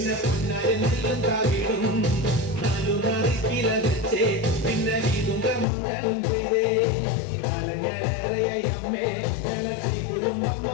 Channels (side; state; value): right; drops out; at 5.7 s